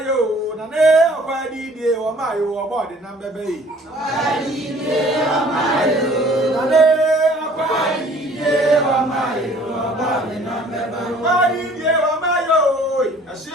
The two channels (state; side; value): normal; both; correlation 0.53